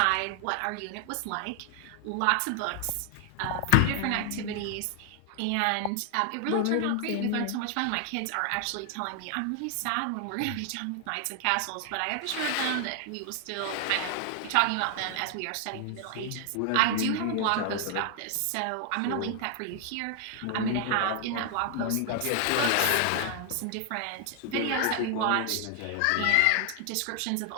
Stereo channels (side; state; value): both; different; correlation 0.00